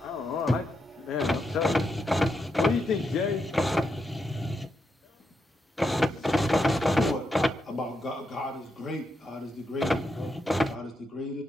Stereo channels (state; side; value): normal; both; correlation 0.83